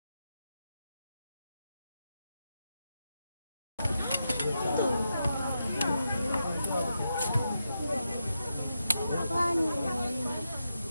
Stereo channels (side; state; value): both; inverted; correlation -0.86